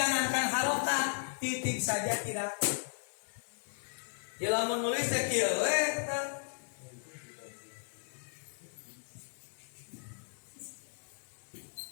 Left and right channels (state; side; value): silent; right; digital silence